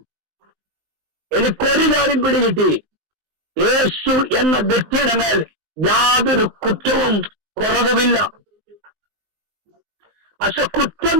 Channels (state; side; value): late; left; 19 ms